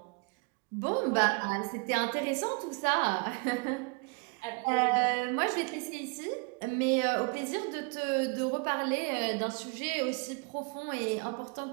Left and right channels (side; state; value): left; quieter; 31.8 dB